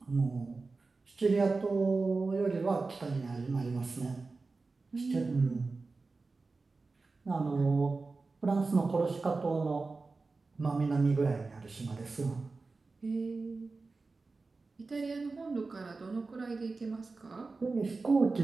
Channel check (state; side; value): quieter; left; 3.9 dB